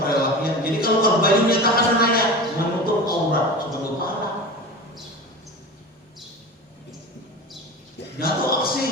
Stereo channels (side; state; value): both; normal; correlation 0.31